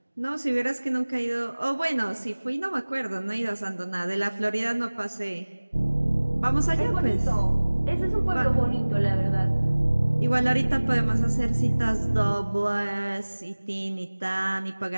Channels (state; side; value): inverted; both; correlation -1.00